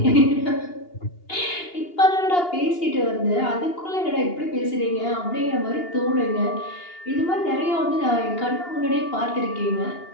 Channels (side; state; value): right; late; 2.8 ms